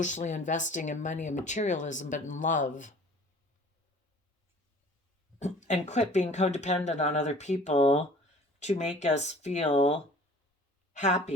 investing in money and materialism, but in love. And quit being codependent on other people to make us feel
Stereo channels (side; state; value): both; normal; correlation 0.47